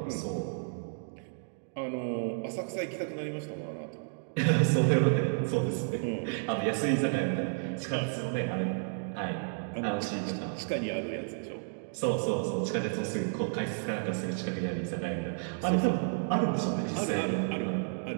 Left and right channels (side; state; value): left; silent; digital silence